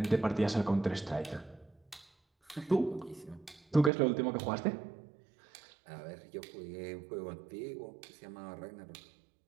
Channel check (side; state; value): left; drops out; at 3.9 s